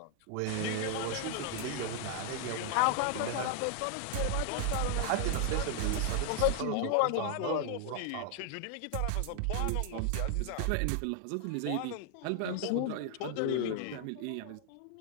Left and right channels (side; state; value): both; different; correlation 0.00